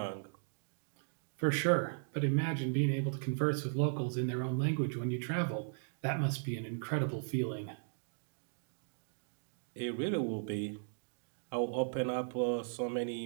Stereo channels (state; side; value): silent; left; digital silence